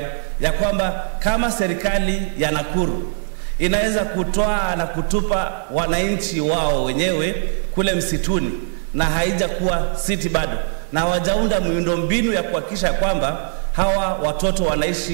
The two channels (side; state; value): left; silent; 65 dB below the other